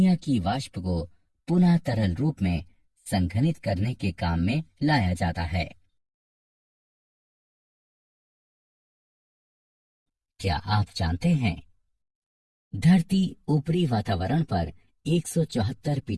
की वाष्प को पुनः तरल रूप में संघनित करने के काम में लाया जाता है। क्या आप जानते हैं, धरती ऊपरी वातावरण पर 174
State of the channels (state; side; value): identical; both; correlation 1.00